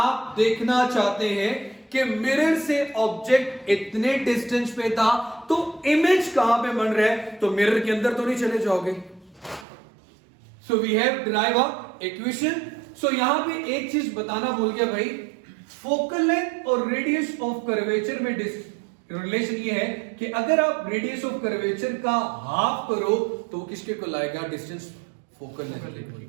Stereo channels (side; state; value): left; drops out; at 9.7 s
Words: देखना चाहते हैं कि मिरर से ऑब्जेक्ट इतने डिस्टेंस पे था तो इमेज कहां पे बन रहा है, तो मिरर के अंदर तो नहीं चले जाओगे। So we have derive a equation. सो यहां पे एक चीज बताना भूल गया भाई, फोकल लेंथ और रेडियस ऑफ कर्वेचर में रिलेशन ये है कि अगर आप रेडियस ऑफ कर्वेचर का हाफ करो तो किसके को लाएगा, डिस्टेंस फोकल लेंथ